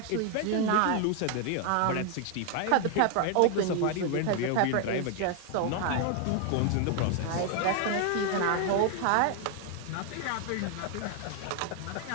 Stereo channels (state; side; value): different; both; correlation 0.00